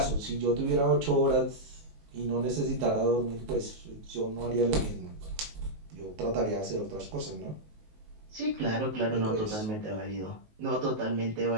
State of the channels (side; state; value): left; late; 19 ms